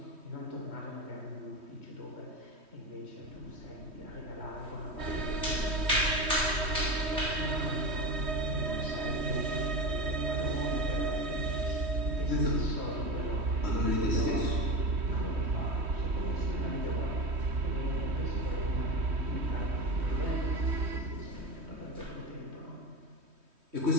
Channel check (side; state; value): left; late; 3.2 ms